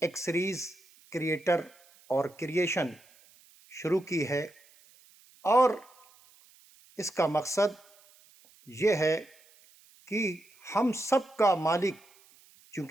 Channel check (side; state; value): right; noise; hiss, 28 dB below the sound